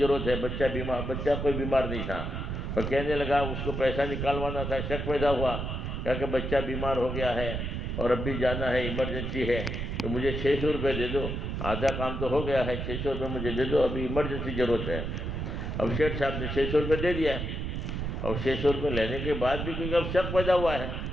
ہے، بچہ کوئی بیمار نہیں تھا، اور کہنے لگا اس کو پیسہ نکالوانا تھا، شک پیدا ہوا، کہا کہ بچہ بیمار ہو گیا ہے اور اب بھی جانا ہے، ایمرجنسی ہے، تو مجھے 600 روپے دے دو، آدھا کام تو ہو گیا ہے، 600 روپے مجھے دے دو، ابھی ایمرجنسی ضرورت ہے۔ اب شیٹھ صاحب نے 600 روپے دے دیا، اور 600 روپے لینے کے بعد بھی کیونکہ اب شک پیدا ہوا ہے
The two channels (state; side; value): noise; right; rumble, 3 dB below the sound